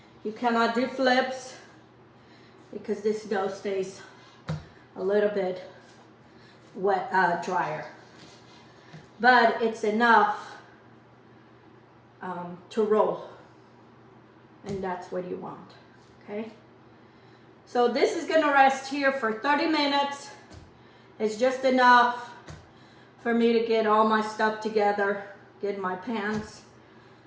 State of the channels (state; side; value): identical; both; correlation 1.00